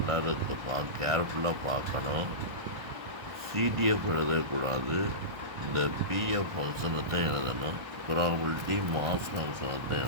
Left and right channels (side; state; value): left; late; 1.3 ms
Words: இருக்கு. கேர்ஃபுல்லாக பார்க்கணும். சிடிஎஃப் எழுதக்கூடாது. இந்த பிஎஃப் ஃபங்க்ஷனை தான் எழுதணும். ப்ராபபிலிட்டி மாஸ் ஃபங்க்ஷனை தான்